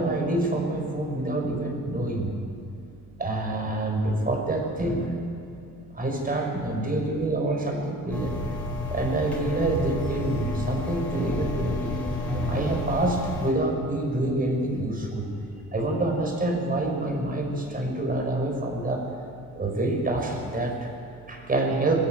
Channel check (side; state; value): right; noise; hum, 23 dB below the sound